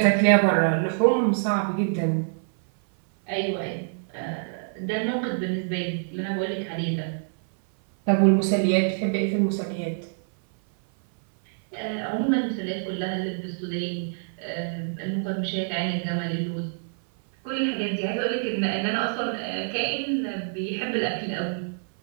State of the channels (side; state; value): left; silent; 58 dB below the other